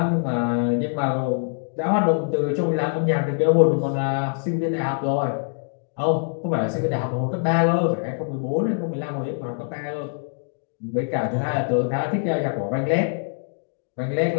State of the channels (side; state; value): right; silent; digital silence